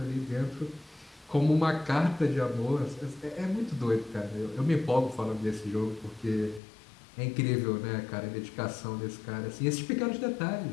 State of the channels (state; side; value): drops out; right; at 6.6 s